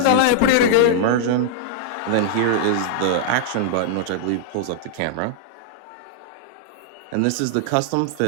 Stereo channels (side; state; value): both; different; correlation -0.01